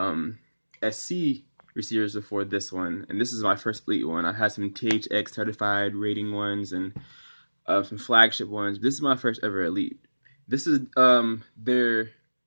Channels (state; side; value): inverted; both; correlation -1.00